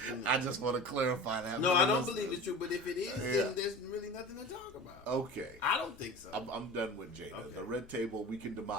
I just want to clarify that. no, for I the don't listeners. believe it's true. But if it is, Yeah. then there's really nothing to talk about. Okay. I don't think so. I'm done with Jada. Okay. The red table, we can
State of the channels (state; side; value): noise; left; hum, 25 dB below the sound